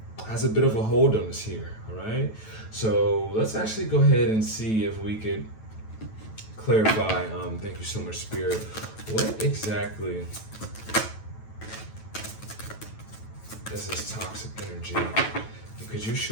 has a bit of a hold on us here, all right? So let's actually go ahead and see if we could clarify, thank you so much, Spirit, what exactly is this toxic energy? Could you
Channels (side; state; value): right; late; 9.1 ms